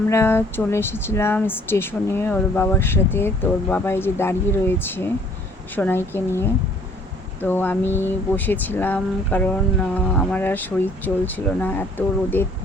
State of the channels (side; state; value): both; normal; correlation 0.58